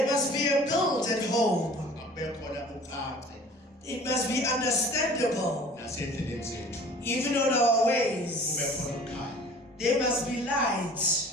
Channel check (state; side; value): normal; both; correlation 0.47